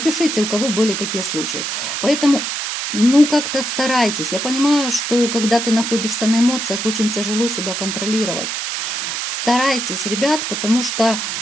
у кого были такие случаи. Поэтому, ну, как-то старайтесь. Я понимаю, что когда ты находишься на эмоциях, очень тяжело себя контролировать. Старайтесь, ребят, потому что,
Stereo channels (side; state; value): right; noise; hiss, 3 dB below the sound